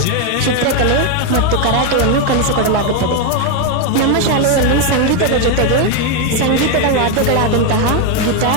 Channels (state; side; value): different; both; correlation 0.02